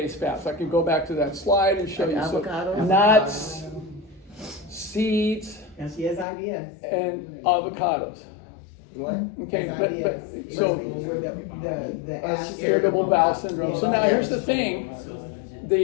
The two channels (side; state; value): right; drops out; at 6.2 s